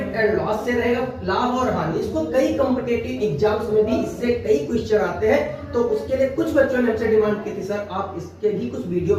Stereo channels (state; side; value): identical; both; correlation 1.00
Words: एंड लॉस से रहेगा, लाभ और हानि। इसको कई कॉम्पिटिटिव एग्जाम्स में भी इससे कई क्वेश्चन आते हैं, तो उसके लिए कुछ बच्चों ने हमसे डिमांड की थी, सर आप इसके भी कुछ वीडियो